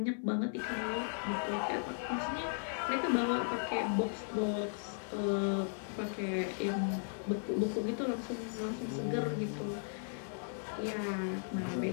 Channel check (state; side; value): silent; right; digital silence